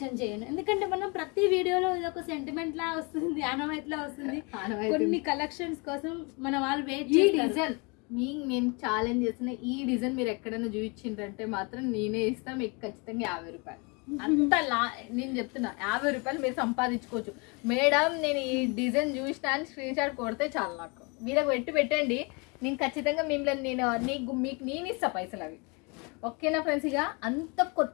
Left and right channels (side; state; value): right; quieter; 30.7 dB